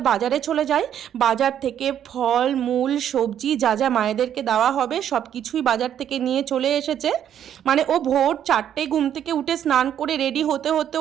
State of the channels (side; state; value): left; quieter; 9.9 dB